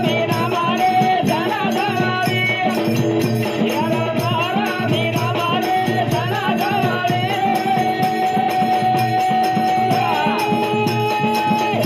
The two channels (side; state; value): both; identical; correlation 1.00